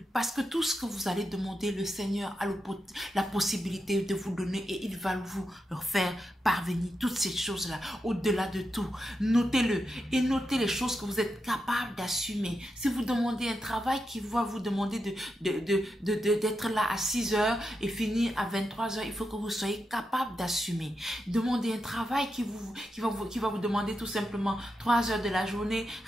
Parce que tout ce que vous allez demander, le Seigneur a la possibilité de vous donner et il va vous faire parvenir toutes ces choses-là, au-delà de tout. Notez-le et notez les choses que vous êtes capable d'assumer. Si vous demandez un travail qui va vous demander d'être là à 6 heures et finir à 23 heures, il faut que vous soyez capable d'assumer. Demandez un travail qui va vous demander tout simplement 3 heures de la journée.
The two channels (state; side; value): normal; both; correlation 0.87